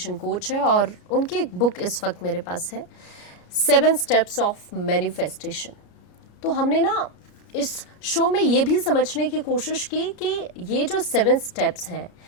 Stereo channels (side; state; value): right; late; 33 ms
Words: कोच है, और उनकी एक बुक इस वक्त मेरे पास है, 7 स्टेप्स ऑफ मैनिफेस्टेशन। तो हमने ना इस शो में ये भी समझने की कोशिश की कि ये जो 7 स्टेप्स हैं